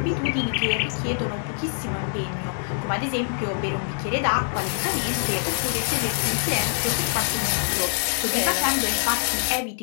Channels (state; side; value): silent; right; digital silence